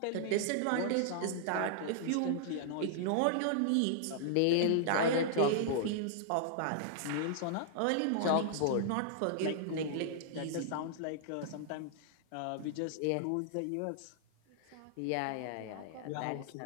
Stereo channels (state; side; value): different; both; correlation -0.01